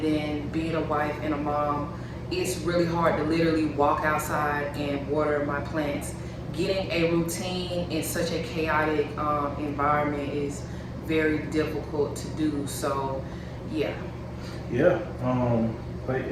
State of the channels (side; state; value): both; identical; correlation 1.00